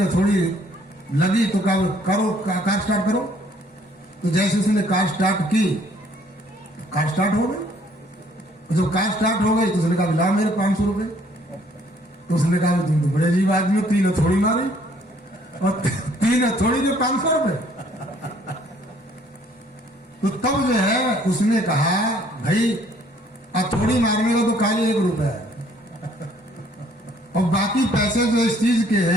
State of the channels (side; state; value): both; normal; correlation 0.62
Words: हथौड़ी लगी तो कहा करो कार स्टार्ट करो। तो जैसे उसने कार स्टार्ट की, कार स्टार्ट हो गई। जब कार स्टार्ट हो गई तो उसने कहा ला मेरे 500 रुपए। तो उसने कहा तुम तो बड़े अजीब आदमी, 3 हथौड़ी मारी और 3 हथौड़ी के 500 रुपए। तो तब जो है उसने कहा भाई हथौड़ी मारने का तो खाली 1 रुपया है, और बाकी पैसे जो इस चीज के